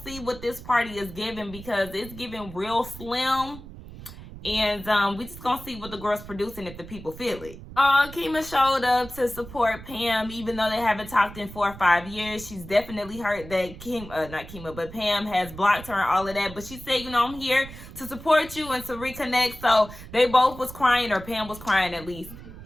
see what this party is giving, because it's giving real slim. And we just gonna see what the girls producing if the people feel it. Kima showed up to support Pam, even though they haven't talked in 4 or 5 years. She's definitely heard that Pam has blocked her and all of that. But she said, you know, I'm here to support you and to reconnect. So they both was crying, or Pam was crying at least.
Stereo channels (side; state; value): right; noise; rumble, 15 dB below the sound